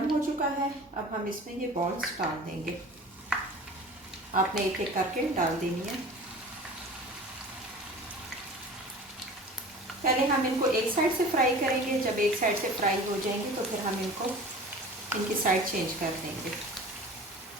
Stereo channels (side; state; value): both; normal; correlation 0.40